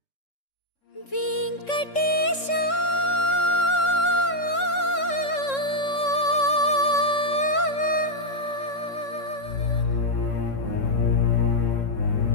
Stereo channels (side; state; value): right; late; 3.6 ms